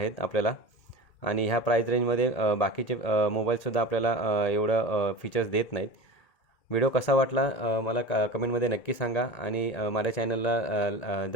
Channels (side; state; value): right; late; 1.8 ms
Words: आपल्याला. आणि ह्या प्राईस रेंजमध्ये बाकीचे मोबाईलसुद्धा आपल्याला एवढं फीचर्स देत नाहीत. व्हिडिओ कसा वाटला मला कमेंटमध्ये नक्की सांगा. आणि माझ्या चॅनलला